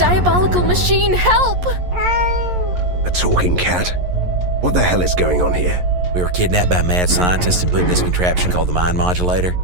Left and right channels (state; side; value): late; left; 11 ms